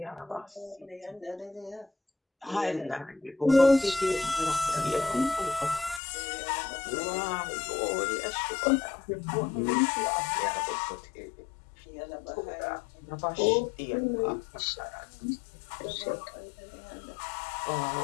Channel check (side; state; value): right; drops out; at 6.0 s